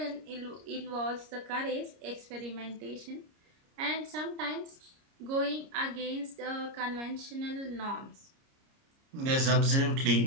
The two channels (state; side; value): late; left; 30 ms